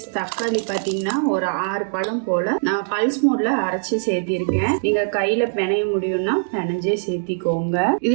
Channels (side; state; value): left; silent; digital silence